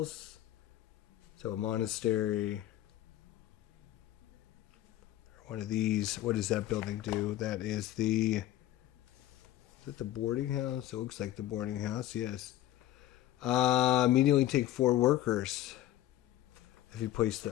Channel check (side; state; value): right; quieter; 13.6 dB